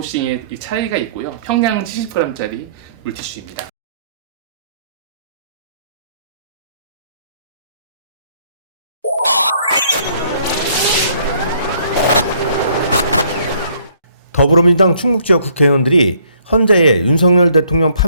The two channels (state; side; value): inverted; both; correlation -0.63